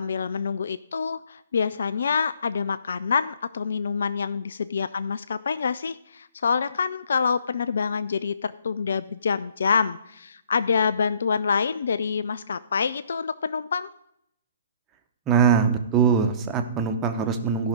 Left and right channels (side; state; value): both; inverted; correlation -0.58